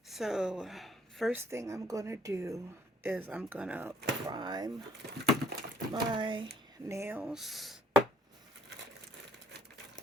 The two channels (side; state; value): both; normal; correlation 0.63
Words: So first thing I'm going to do is I'm going to prime my nails.